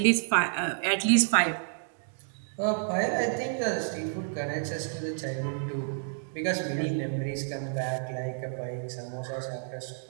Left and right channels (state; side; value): silent; left; digital silence